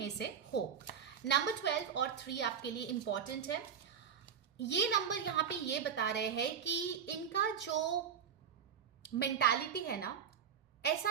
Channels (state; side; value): quieter; left; 7.7 dB